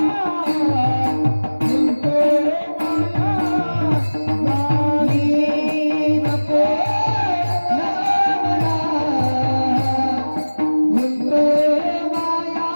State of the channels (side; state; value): both; inverted; correlation -1.00